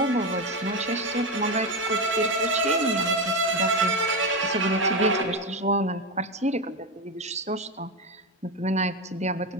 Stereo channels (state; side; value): normal; both; correlation 0.13